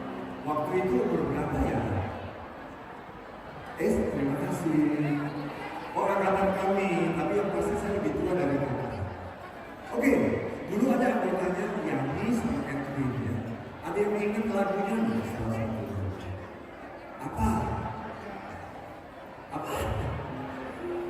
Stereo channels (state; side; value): identical; both; correlation 1.00